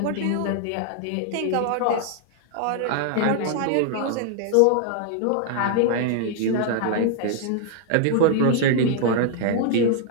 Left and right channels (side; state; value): both; different; correlation 0.00